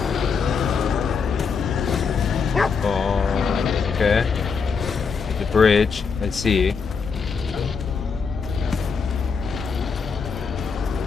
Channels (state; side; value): quieter; right; 5.5 dB